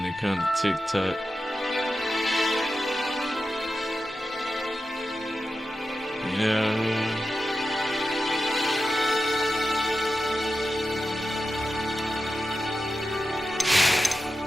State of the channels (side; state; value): both; normal; correlation 0.91